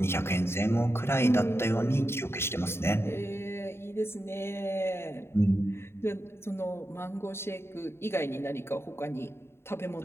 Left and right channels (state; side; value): late; right; 0.12 ms